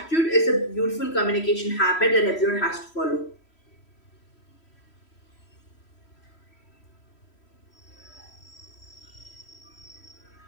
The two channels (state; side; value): late; right; 3.1 ms